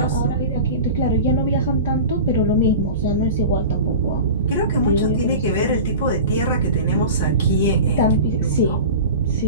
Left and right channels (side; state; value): both; inverted; correlation -0.33